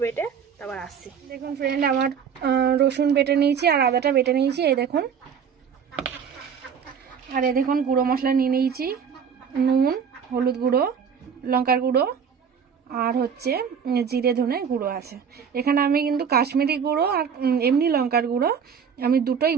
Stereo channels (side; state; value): left; quieter; 7.1 dB